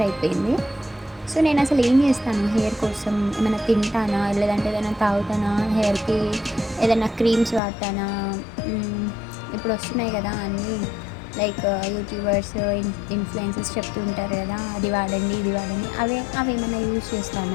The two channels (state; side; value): drops out; right; at 7.6 s